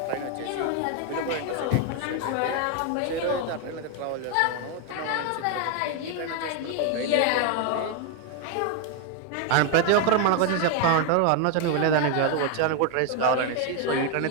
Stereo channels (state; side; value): different; both; correlation 0.01